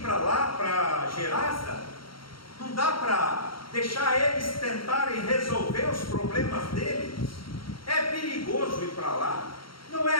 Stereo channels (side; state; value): right; late; 0.73 ms